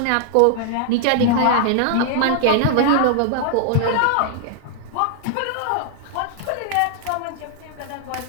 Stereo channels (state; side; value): different; both; correlation 0.00